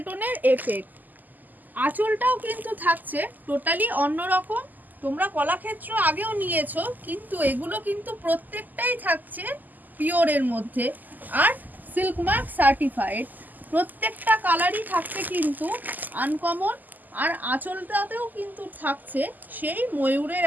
টোনের এফেক্ট। আঁচলটাও কিন্তু থাকছে টোটালি অন্যরকম। তোমরা কলাক্ষেত্র আগেও নিয়েছো, কিন্তু এগুলো কিন্তু প্রত্যেকটাই থাকছে পিওরের মধ্যে আর সিল্ক মার্ক সার্টিফাইড। প্রত্যেকটা কালারই থাকছে কিন্তু আনকমন, আর আঁচলটাতেও কিন্তু থাকছে সেই ময়ূরের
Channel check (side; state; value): left; late; 0.084 ms